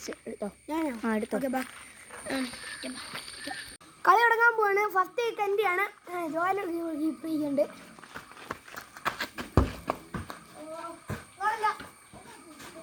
എടുത്തോ. ഞാനോ? എടുത്തോ. ഓക്കെ ബാ. കളി തുടങ്ങാൻ പോവാണ്. ഫസ്റ്റ് കിക്ക് എൻ്റെയാണ്. ജോയൽ കീപ്പർ ചെയ്യുന്നുണ്ട്.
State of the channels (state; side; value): identical; both; correlation 1.00